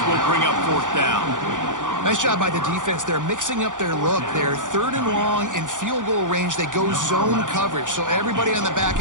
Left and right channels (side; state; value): left; late; 0.87 ms